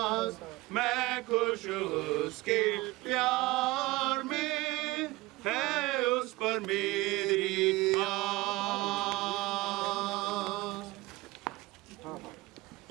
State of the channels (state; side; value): quieter; left; 20.7 dB